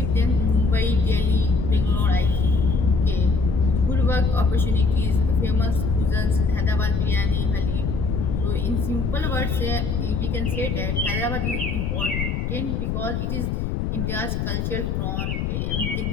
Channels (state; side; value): noise; left; rumble, 1 dB below the sound